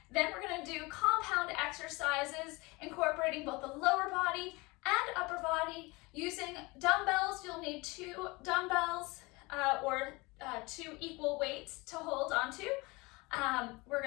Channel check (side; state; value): right; quieter; 24.6 dB